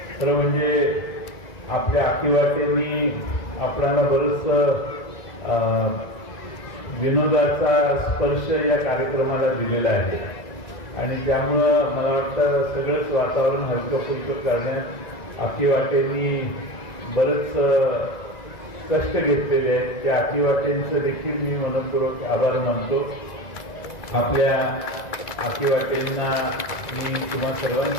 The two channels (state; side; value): late; right; 1.9 ms